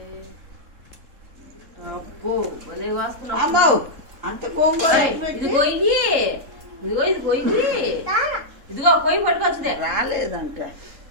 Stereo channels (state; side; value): late; left; 3.7 ms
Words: అప్పు, భలే వస్తున్నావు. అమ్మో అంత గోంగూర ఇది కొయ్యి, ఇదిగో ఇది కొయ్యి, ఇదిగో కొయ్యి పట్టుకొచ్చుదే. రాలేదంట